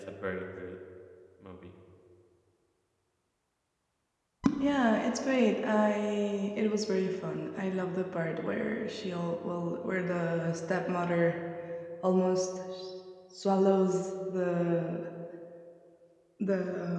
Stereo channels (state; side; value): identical; both; correlation 1.00